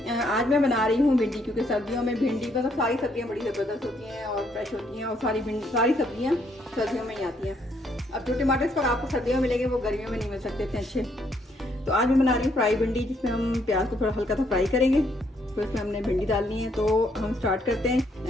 आज मैं बना रही हूँ भिंडी, क्योंकि सर्दियों में भिंडी मतलब सारी सब्जियाँ बड़ी ज़बरदस्त होती हैं और फ्रेश होती हैं और सारी सब्जियाँ सर्दियों में ही आती हैं। अब जो टमाटर इस पर आपको सर्दियों में मिलेंगे वो गर्मियों में नहीं मिल सकते इतने अच्छे। तो आज मैं बना रही हूँ फ्राई भिंडी, जिसमें हम प्याज को थोड़ा हल्का सा फ्राई करेंगे। तो इसमें हमने भिंडी डालनी है, तो हम स्टार्ट करते हैं।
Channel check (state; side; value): normal; both; correlation 0.71